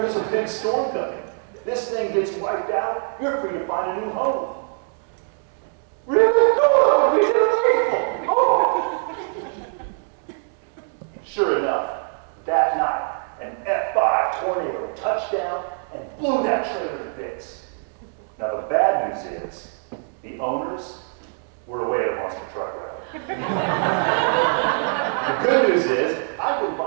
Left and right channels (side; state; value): left; silent; 63 dB below the other